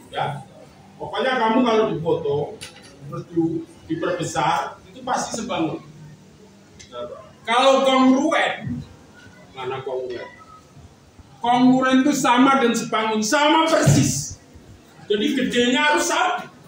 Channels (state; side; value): identical; both; correlation 1.00